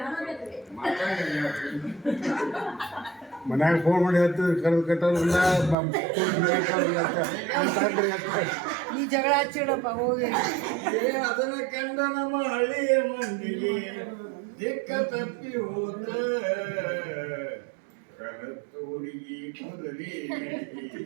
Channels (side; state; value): left; drops out; at 5.8 s